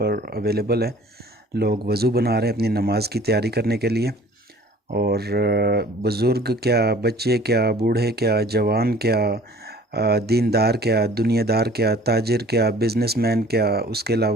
अवेलेबल है। लोग वज़ू बना रहे हैं अपनी नमाज की तैयारी करने के लिए। और बुज़ुर्ग क्या, बच्चे क्या, बूढ़े क्या, जवान क्या, दीनदार क्या, दुनियादार क्या, ताजिर क्या, बिजनेसमैन क्या, उसके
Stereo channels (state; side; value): normal; both; correlation 0.50